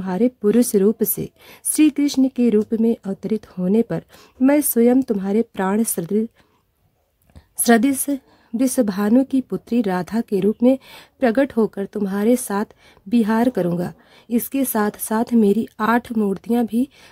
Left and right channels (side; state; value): both; identical; correlation 1.00